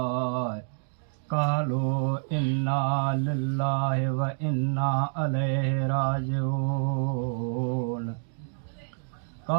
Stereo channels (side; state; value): left; silent; digital silence